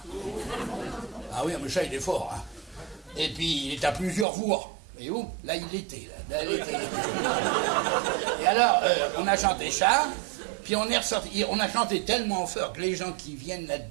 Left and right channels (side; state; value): left; drops out; at 4.2 s